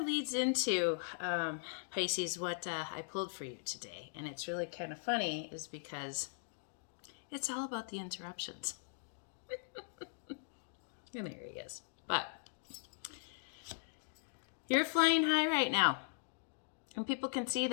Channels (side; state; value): right; silent; digital silence